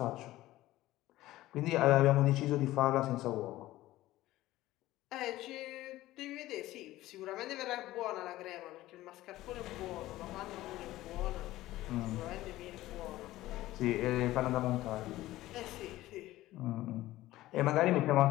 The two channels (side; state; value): right; quieter; 16.2 dB